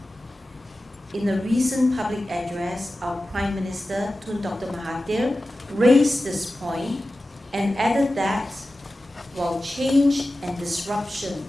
In a recent public address, our Prime Minister, Tun Dr. Mahathir, raised this point and added that while change and disruption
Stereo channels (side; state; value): both; normal; correlation 0.94